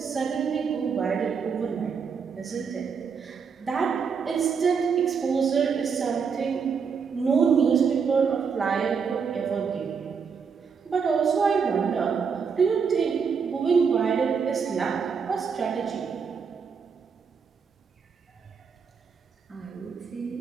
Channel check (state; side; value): quieter; left; 6.1 dB